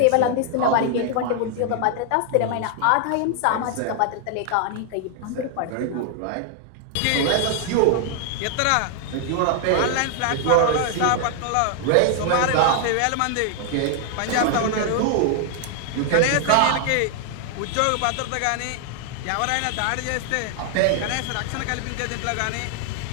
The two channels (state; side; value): different; both; correlation 0.00